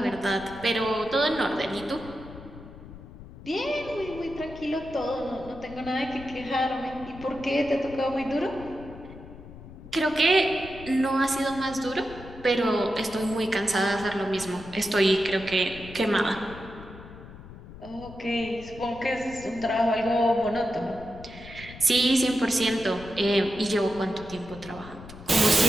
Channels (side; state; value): left; noise; rumble, 16 dB below the sound